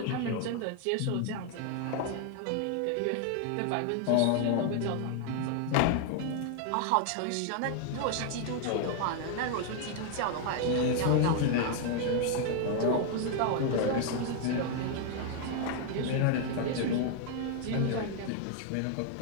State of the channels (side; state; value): both; different; correlation 0.00